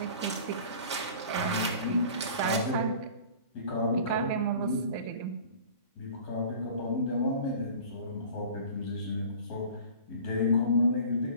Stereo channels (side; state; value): both; inverted; correlation -0.42